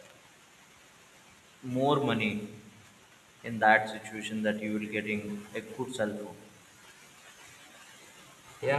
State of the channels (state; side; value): identical; both; correlation 1.00